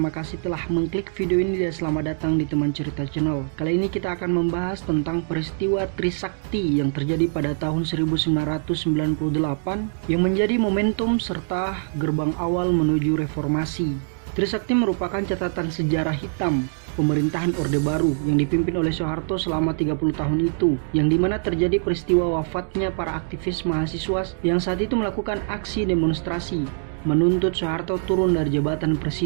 kasih telah mengklik video ini dan selamat datang di Teman Cerita Channel. Kali ini kita akan membahas tentang peristiwa Trisakti yang terjadi pada tahun 1998 yang menjadi momentum serta gerbang awal menuju reformasi. Trisakti merupakan catatan sejarah hitam pemerintahan Orde Baru yang dipimpin oleh Soeharto selama 30 tahun itu, yang dimana terjadi peristiwa wafatnya para aktivis mahasiswa yang saat itu melakukan aksi demonstrasi menuntut Soeharto turun dari jabatan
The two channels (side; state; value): left; silent; digital silence